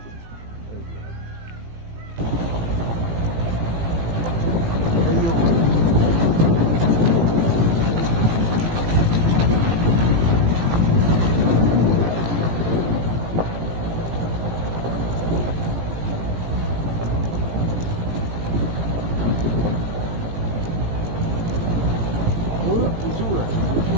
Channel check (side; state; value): left; late; 18 ms